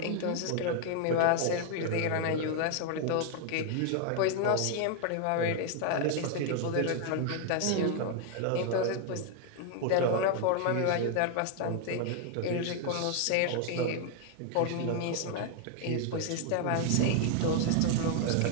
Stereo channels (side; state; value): both; different; correlation 0.00